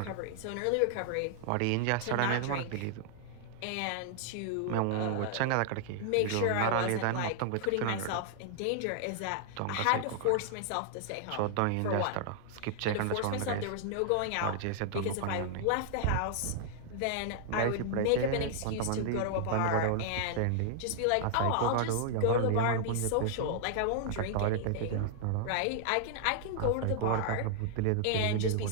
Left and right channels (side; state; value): both; different; correlation -0.01